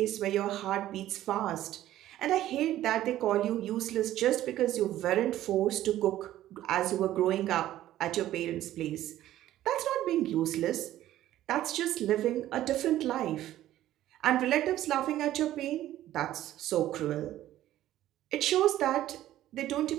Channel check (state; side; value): quieter; left; 13.6 dB